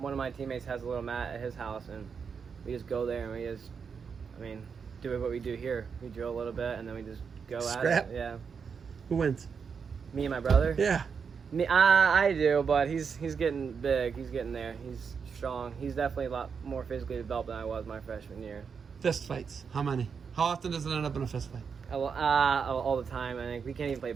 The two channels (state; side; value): quieter; left; 6.1 dB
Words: of my teammates has a little mat at his house, and we just go there and we just, I mean, do what we do here. We drill a little bit, and then we just go Scrap? at it. Yeah. Who wins? Me and my brother. Yeah. Me, I do, but he's getting big. He's getting there. He's strong. He's definitely a lot more physically developed than I was my freshman year. Fist fights. How many? How often does it end up in a fist fight? All the time. I think we can't even play